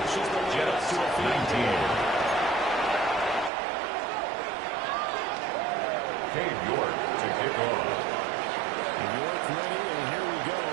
Jets 19. Cade York to kick off. York ready, and here we go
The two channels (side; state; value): left; drops out; at 3.5 s